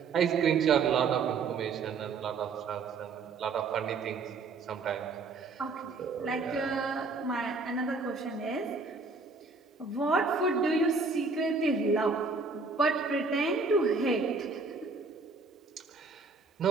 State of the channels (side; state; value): left; quieter; 4.3 dB